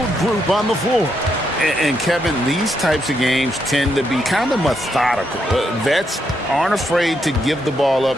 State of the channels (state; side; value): normal; both; correlation 0.79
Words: group on the floor? And Kevin, these types of games tend to be kind of methodical. Vets aren't afraid to give the ball up